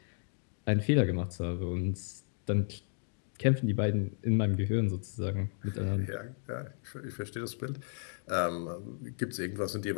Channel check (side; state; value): right; silent; digital silence